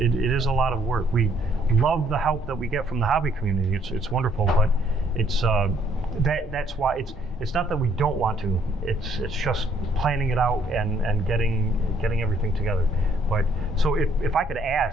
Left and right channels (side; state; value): both; normal; correlation 0.66